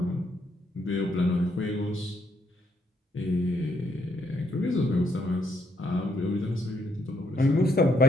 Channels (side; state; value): both; normal; correlation 0.74